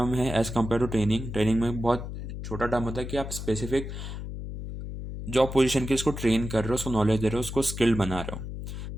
है as compare to training. Training में बहुत छोटा term होता है कि आप स्पेसिफिक जॉब पोजीशन के उसको ट्रेन कर रहे हो, उसको नॉलेज दे रहे हो, उसको स्किल्ड बना रहे हो।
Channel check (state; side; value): noise; left; hum, 7 dB below the sound